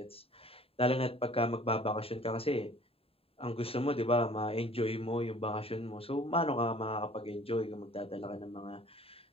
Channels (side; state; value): right; late; 0.27 ms